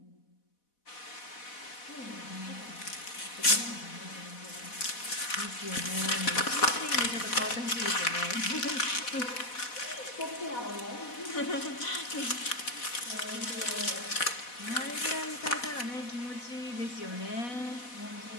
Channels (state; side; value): late; right; 4.1 ms